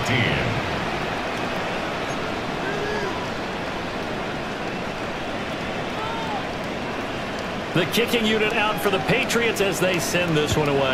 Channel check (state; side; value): identical; both; correlation 1.00